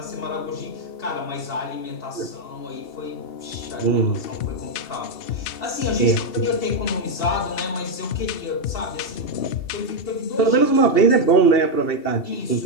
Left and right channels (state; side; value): late; right; 2.7 ms